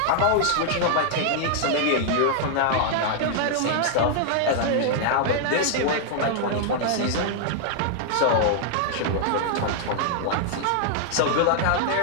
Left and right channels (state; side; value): different; both; correlation 0.00